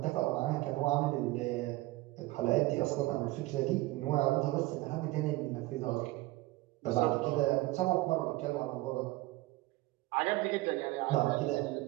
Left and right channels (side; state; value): left; quieter; 19.3 dB